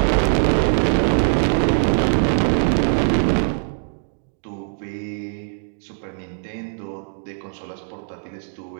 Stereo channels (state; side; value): silent; left; digital silence